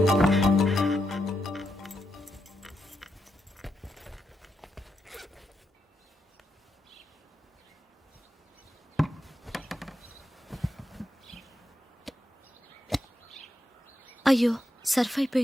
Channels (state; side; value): normal; both; correlation 0.84